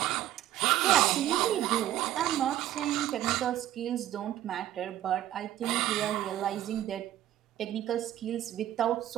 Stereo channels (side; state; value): left; quieter; 12.9 dB